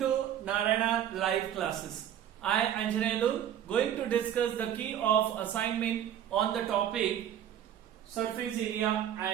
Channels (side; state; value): left; quieter; 10.3 dB